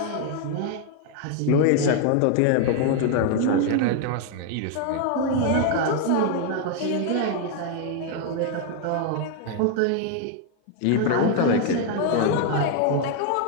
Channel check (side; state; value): both; different; correlation 0.00